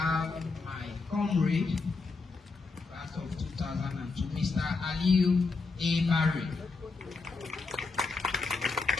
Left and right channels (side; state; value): right; quieter; 4.1 dB